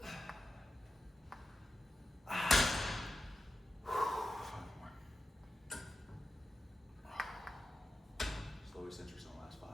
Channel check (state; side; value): normal; both; correlation 0.91